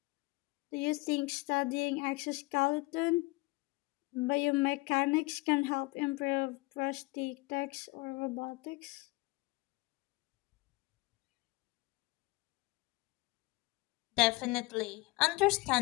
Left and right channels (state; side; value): quieter; right; 23.5 dB